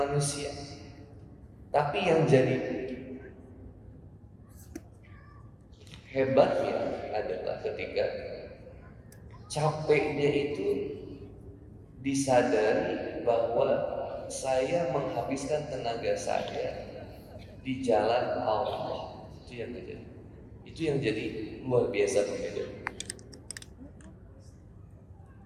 Tapi yang jadi hebatnya adalah ketika capeknya itu disadari bahwa saya menghabiskan tenaga saya di jalan Allah. Itu yang jadi luar biasa pembeda.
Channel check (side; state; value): both; identical; correlation 1.00